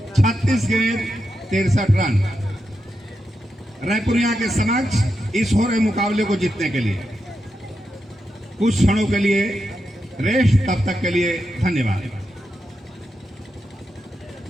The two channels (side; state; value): both; normal; correlation 0.86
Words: 36 गेंद 63 रन रायपुरिया के समक्ष इस हो रहे मुकाबले को जीतने के लिए। कुछ क्षणों के लिए रेस्ट, तब तक के लिए धन्यवाद।